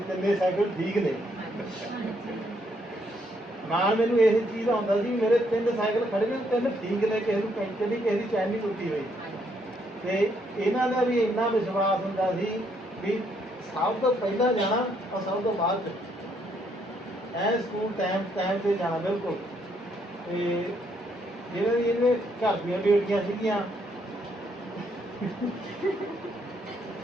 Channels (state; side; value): normal; both; correlation 0.72